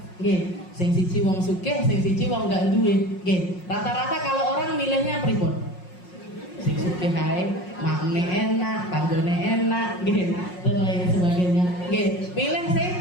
Sing siji wong sugih, sing siji wong gak duwe. Rata-rata kalau orang milihnya pripun? Sing sugih ae, makne enak, panggone enak, dan lain sebagainya. Pilih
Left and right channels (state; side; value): late; right; 5.5 ms